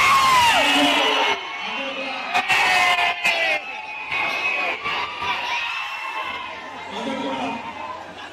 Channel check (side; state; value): both; identical; correlation 1.00